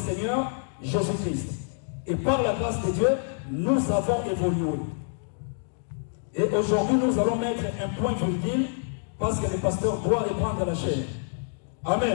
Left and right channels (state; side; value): silent; right; digital silence